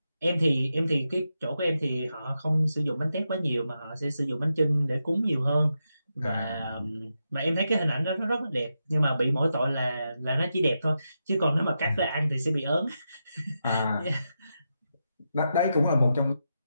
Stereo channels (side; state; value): both; inverted; correlation -0.87